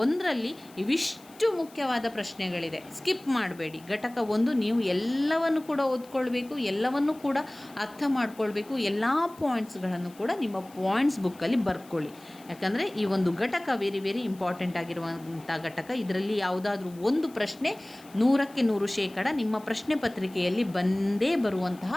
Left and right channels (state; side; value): noise; left; hiss, 24 dB below the sound